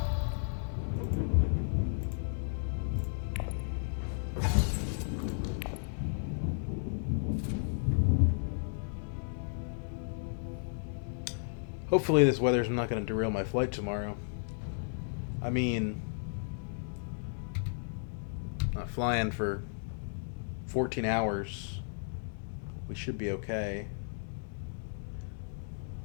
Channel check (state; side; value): silent; right; digital silence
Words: Hopefully this weather's not going to derail my flight tomorrow. I mean, not flying for 14 hours. We should be okay.